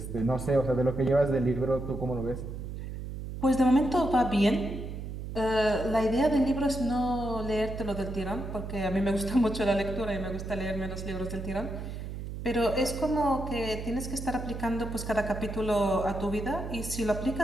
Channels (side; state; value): right; noise; hum, 7 dB below the sound